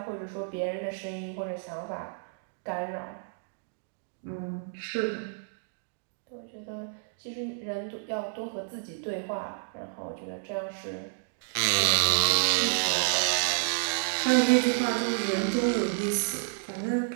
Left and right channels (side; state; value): left; silent; digital silence